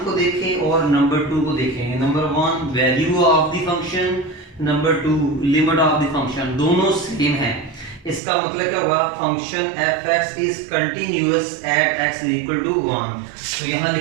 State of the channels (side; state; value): left; drops out; at 8.2 s